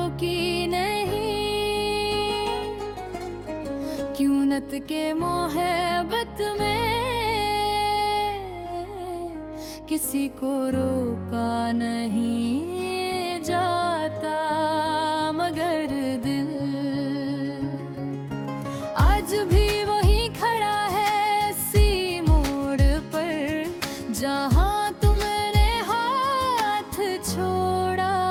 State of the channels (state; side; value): identical; both; correlation 1.00